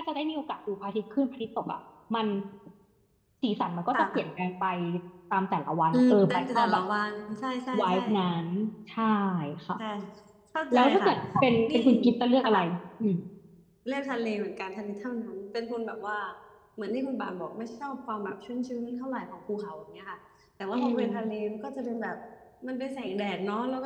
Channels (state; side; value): identical; both; correlation 1.00